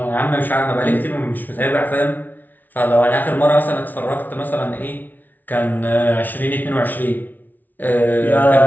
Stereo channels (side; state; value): right; late; 0.083 ms